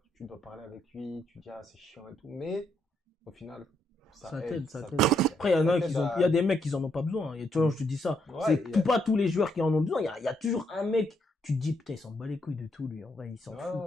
tu dois parler avec lui, tu dis, ah, c'est chiant et tout. Mais au final, Ça aide, t'aide, ça t'aide. Après, il y en a t'aide qui ont, il y a des mecs qui en ont pas besoin. Tu vois, je te dis ça. Ouais, C'est il y a- pas tous les joueurs qui en ont besoin. Il y a toujours un mec, tu te dis, putain, il s'en bat les couilles de tout, lui. En vrai, il s'en Ouais, fout.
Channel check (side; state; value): both; normal; correlation 0.75